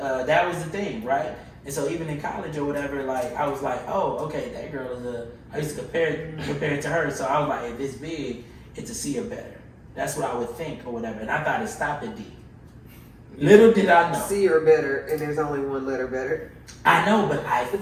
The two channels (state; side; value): identical; both; correlation 1.00